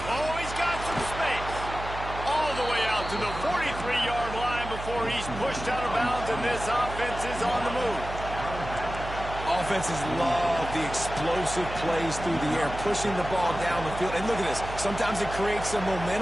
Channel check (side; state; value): right; noise; hum, 9 dB below the sound